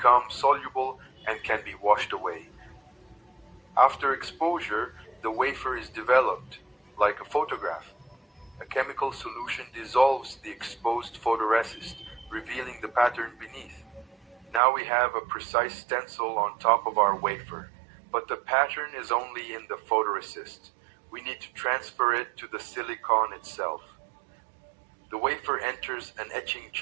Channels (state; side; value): drops out; left; at 14.6 s